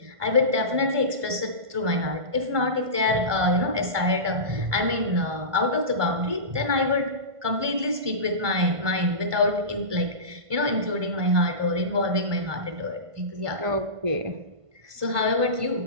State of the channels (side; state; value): left; late; 1.5 ms